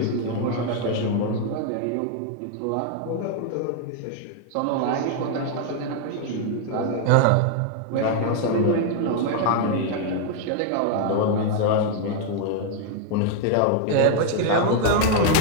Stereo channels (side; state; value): both; different; correlation 0.00